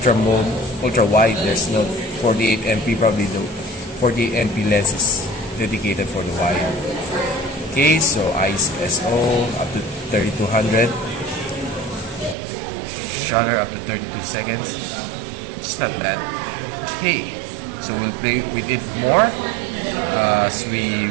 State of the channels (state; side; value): drops out; left; at 12.4 s